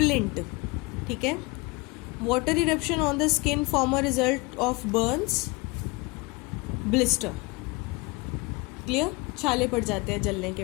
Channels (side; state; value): right; quieter; 25.8 dB